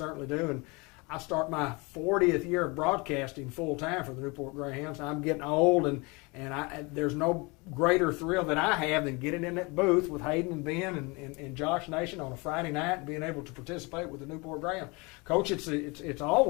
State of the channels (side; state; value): right; quieter; 27.3 dB